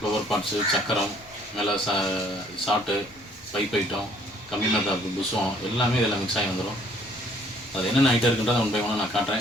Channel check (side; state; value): both; normal; correlation 0.61